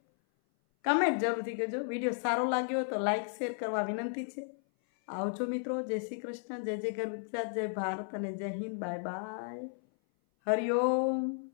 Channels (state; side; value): silent; right; 55 dB below the other